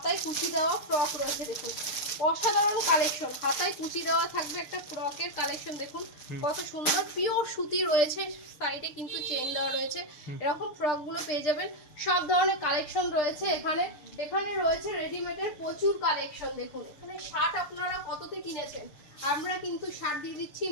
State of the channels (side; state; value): right; late; 6.7 ms